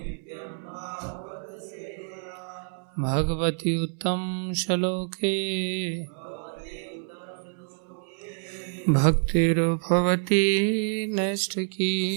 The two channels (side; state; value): left; silent; 60 dB below the other